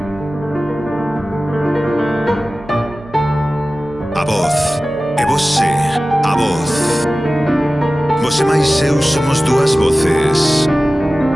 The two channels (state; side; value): noise; right; hum, 20 dB below the sound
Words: a voz, e você, a voz. Você máis eu somos dúas voces.